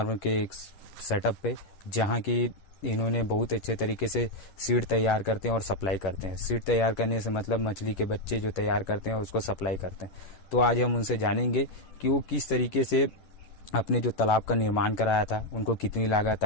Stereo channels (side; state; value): right; late; 11 ms